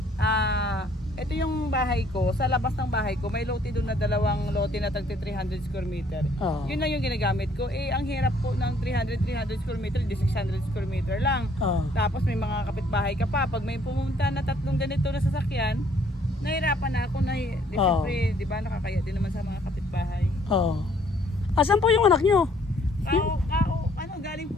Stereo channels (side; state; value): both; normal; correlation 0.63